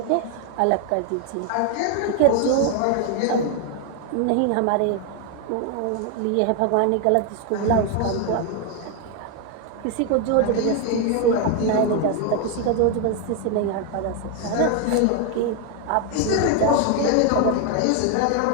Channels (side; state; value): both; different; correlation 0.01